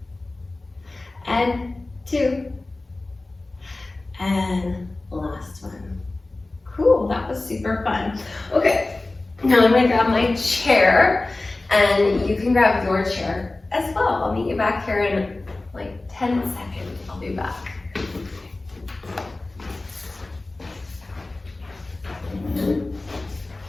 and 2, and last one. Cool, that was super fun. Okay, now I'm gonna grab my chair, and you can grab your chair as well. I'll meet you back here in like 10 seconds. I'll be back.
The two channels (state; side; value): quieter; right; 3.0 dB